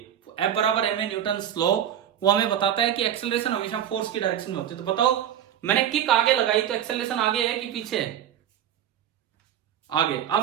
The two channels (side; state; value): left; quieter; 10.2 dB